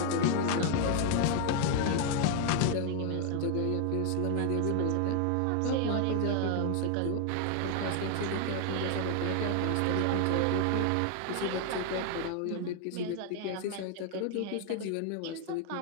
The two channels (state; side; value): different; both; correlation 0.00